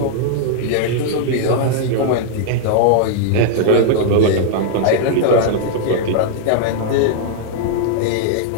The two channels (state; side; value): different; both; correlation -0.01